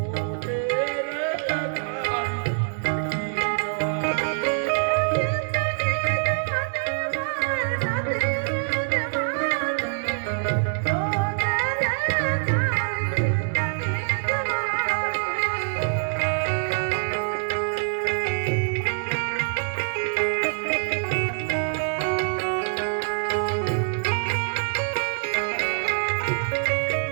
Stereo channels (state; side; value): silent; left; digital silence